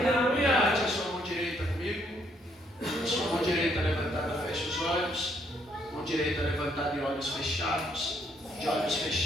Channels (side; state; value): both; normal; correlation 0.70